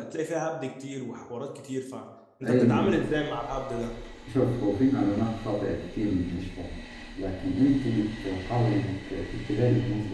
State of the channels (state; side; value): identical; both; correlation 1.00